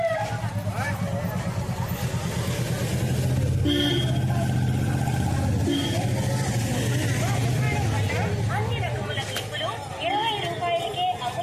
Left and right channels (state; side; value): identical; both; correlation 1.00